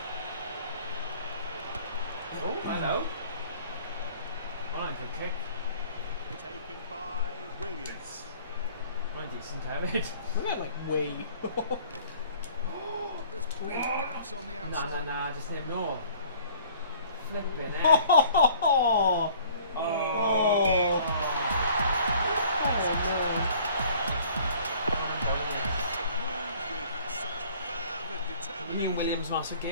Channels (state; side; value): inverted; both; correlation -0.53